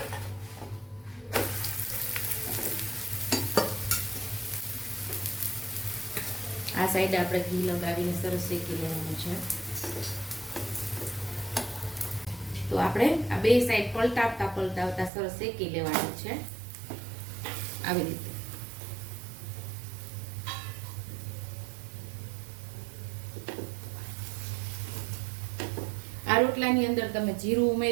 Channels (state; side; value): drops out; left; at 15.1 s